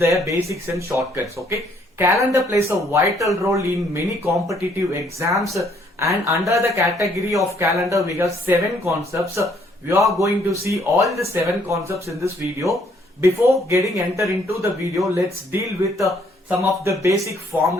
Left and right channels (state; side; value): normal; both; correlation 0.66